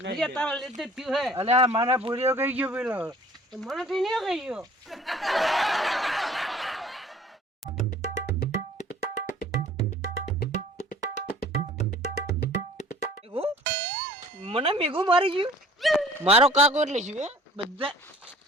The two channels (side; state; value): both; normal; correlation 0.50